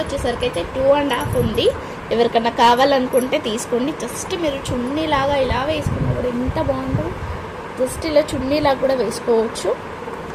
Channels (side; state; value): both; identical; correlation 1.00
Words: అయితే 2.5 ఉంది. ఎవరికన్నా కావాలనుకుంటే తీసుకోండి. జస్ట్ మీరు చున్నీలాగా ఇలా వేసుకున్నా కూడా ఎంత బాగుంటుందో. జస్ట్ ఇలా చున్నీలాగా కూడా వేసుకోవచ్చు.